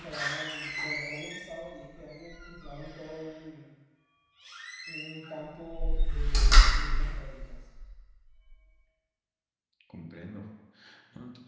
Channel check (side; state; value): both; identical; correlation 1.00